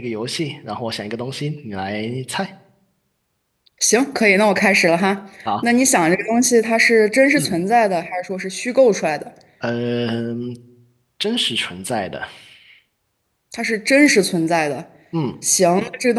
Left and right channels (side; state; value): both; identical; correlation 1.00